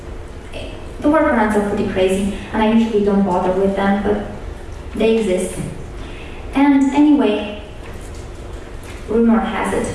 the workarounds are pretty crazy, and I usually don't bother with them, but they exist. And anyway, rumor has it,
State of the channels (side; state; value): both; identical; correlation 1.00